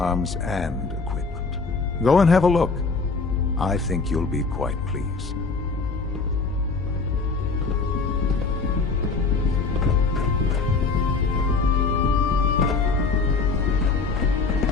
and equipment. Go and have a look. I think you'll be quite pleased.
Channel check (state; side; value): quieter; right; 4.3 dB